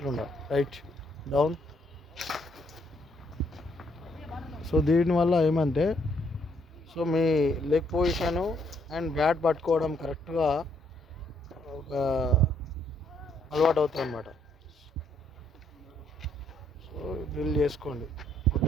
రైట్ డౌన్. సో దీనివల్ల ఏమంటే so me leg position and bat పట్టుకోవడం కరెక్ట్గా ఒక అలవాటు అవుతుంది అన్నమాట. సో డ్రిల్ చేసుకోండి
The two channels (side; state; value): both; normal; correlation 0.70